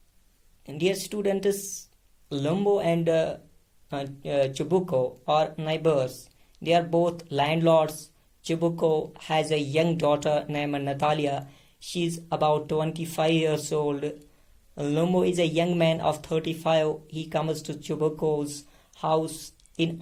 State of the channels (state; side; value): identical; both; correlation 1.00